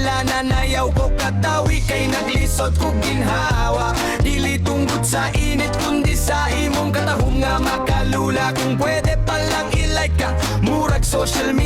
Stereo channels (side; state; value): both; identical; correlation 1.00